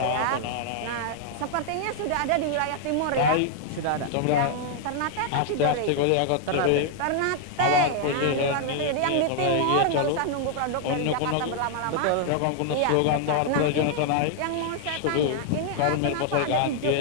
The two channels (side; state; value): both; different; correlation 0.00